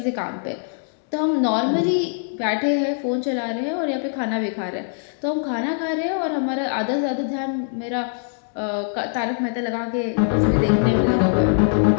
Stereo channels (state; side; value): silent; right; digital silence